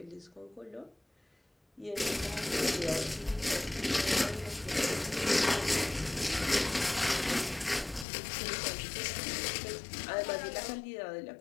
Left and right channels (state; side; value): drops out; right; at 8.1 s